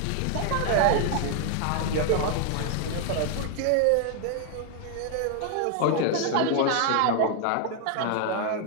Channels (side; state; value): both; different; correlation 0.00